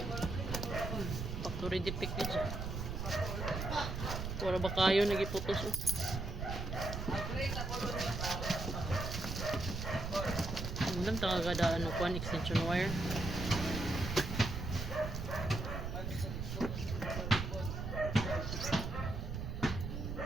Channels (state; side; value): noise; right; rumble, 4 dB below the sound